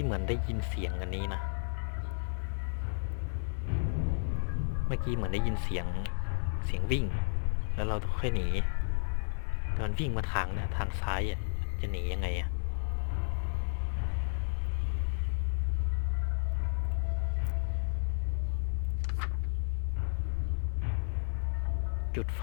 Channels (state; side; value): silent; right; digital silence